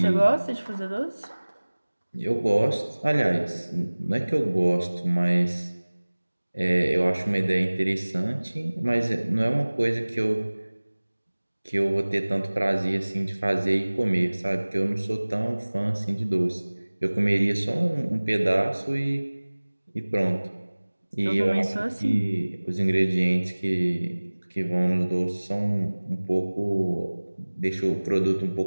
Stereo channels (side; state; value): both; inverted; correlation -1.00